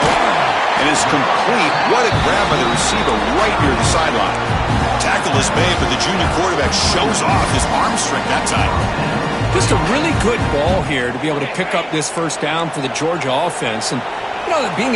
it's complete. What a grab by the receiver right near the sideline. Tackle is made, but the junior quarterback shows off his arm strength that time. Just a really good ball here to be able to pick up this first down for the Georgia offense. And you know, being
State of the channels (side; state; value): both; identical; correlation 1.00